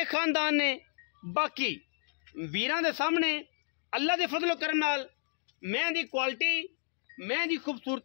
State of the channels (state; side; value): silent; right; digital silence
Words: खानदान ने। बाकी वीरां दे सामने अल्लाह के फजल करम नाल मैं दी क्वालिटी, मैं दी